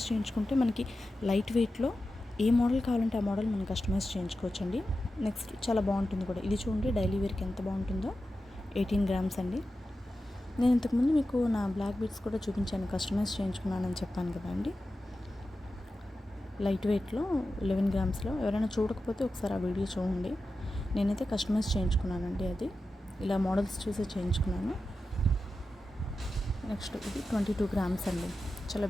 చేయించుకుంటే మనకి లైట్ వెయిట్లో ఏ మోడల్ కావాలంటే ఆ మోడల్ మనం కస్టమైజ్ చేయించుకోవచ్చండి. నెక్స్ట్ చాలా బాగుంటుంది కూడా. ఇది చూడండి, డైలీ వేర్కి ఎంత బాగుంటుందో. 18 గ్రామ్స్ అండి. నేను ఇంతకుముందు మీకు నా బ్లాక్ బీడ్స్ కూడా చూపించాను, కస్టమైజ్ చేయించుకున్నానని చెప్పాను కదా అండి. లైట్ వెయిట్లో 11 గ్రామ్స్లో. ఎవరైనా చూడకపోతే ఒకసారి ఆ వీడియో చూడండి. నేనైతే కస్టమైజ్ చేయించుకున్నానండి. అది ఇలా మోడల్స్ చూసి చేయించుకున్నాను. నెక్స్ట్ ఇది 22 గ్రామ్స్ అండి. చాలా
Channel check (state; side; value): normal; both; correlation 0.92